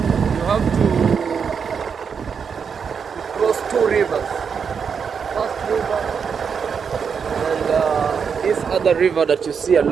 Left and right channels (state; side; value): quieter; left; 6.4 dB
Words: you have to cross 2 rivers. First river and this other river that you see